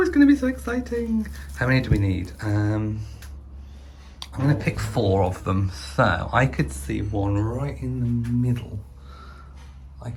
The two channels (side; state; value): both; identical; correlation 1.00